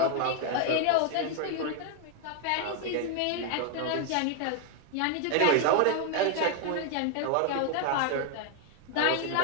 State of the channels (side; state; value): both; different; correlation 0.00